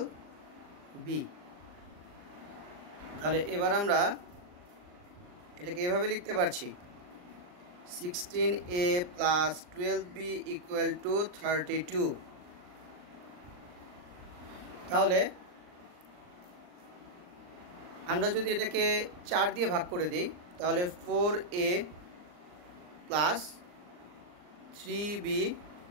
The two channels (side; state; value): left; late; 39 ms